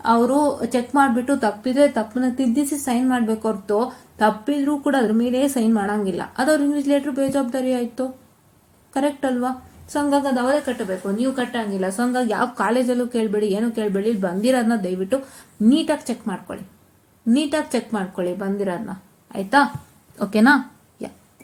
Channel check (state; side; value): identical; both; correlation 1.00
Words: ಅವರು ಚೆಕ್ ಮಾಡಿಬಿಟ್ಟು ತಪ್ಪಿದ್ರೆ ತಪ್ಪನ್ನ ತಿದ್ದಿಸಿ ಸೈನ್ ಮಾಡಬೇಕು ಹೊರತು, ತಪ್ಪಿದ್ರೂ ಕೂಡ ಅದ್ರ ಮೇಲೆ ಸೈನ್ ಮಾಡೋಂಗಿಲ್ಲ. ಅದು ಅವ್ರ ಇನ್ವಿಜಿಲೇಟರ್ ಬೇಜವಾಬ್ದಾರಿ ಆಯಿತು. ಕರೆಕ್ಟ್ ಅಲ್ವಾ? ಸೊ ಹಂಗಾಗಿ ಅದು ಅವರೇ ಕಟ್ಟಬೇಕು, ನೀವು ಕಟ್ಟಂಗಿಲ್ಲ. ಸೊ ಹಂಗಾಗಿ ಯಾವ ಕಾಲೇಜಲ್ಲೂ ಕೇಳಬೇಡಿ, ಏನೂ ಕೇಳಬೇಡಿ. ಇಲ್ಲಿ ಬಂದಿರೋದನ್ನ ದಯವಿಟ್ಟು ನೀಟಾಗಿ ಚೆಕ್ ಮಾಡ್ಕೊಳ್ಳಿ ಬಂದಿರೋದನ್ನ. ಆಯಿತಾ? ಓಕೆನಾ? ಯಾ.